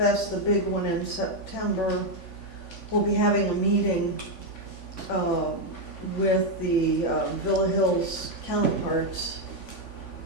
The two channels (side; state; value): right; late; 3.5 ms